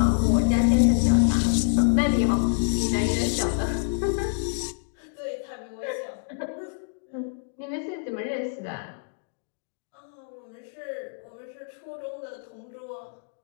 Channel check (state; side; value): silent; right; digital silence